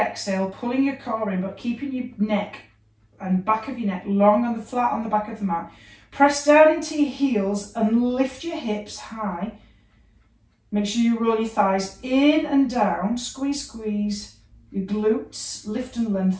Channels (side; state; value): both; identical; correlation 1.00